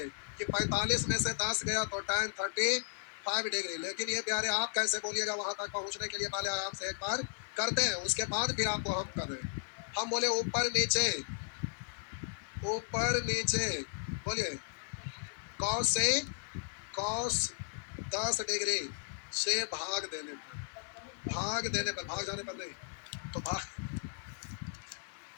कि 45 में से 10 गया तो tan 35 डिग्री। लेकिन ये प्यारे आप कैसे बोलिएगा, वहां तक पहुंचने के लिए पहले आराम से एक बार करते हैं, उसके बाद फिर आपको हम कर रहे हैं। हम बोले ऊपर नीचे, ऊपर नीचे बोलिए cos से cos 10 डिग्री से भाग देने पर, भाग देने पर, भाग जाने पर नहीं तो भाग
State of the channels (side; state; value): right; silent; 54 dB below the other